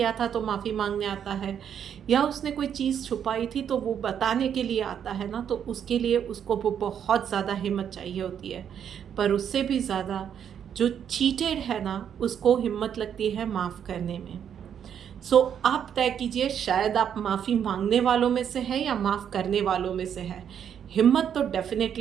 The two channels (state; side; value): quieter; left; 8.6 dB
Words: था तो माफ़ी मांगने आता है, या उसने कोई चीज़ छुपाई थी तो वो बताने के लिए आता है ना, तो उसके लिए उसको वो बहुत ज़्यादा हिम्मत चाहिए होती है। पर उससे भी ज़्यादा जो चीटेड है ना, उसको हिम्मत लगती है माफ़ करने में। आप तय कीजिए, शायद आप माफ़ी मांगने वालों में से है या माफ़ करने वालों में से है। हिम्मत तो